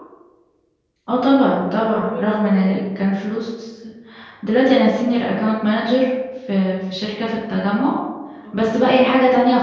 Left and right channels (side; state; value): both; identical; correlation 1.00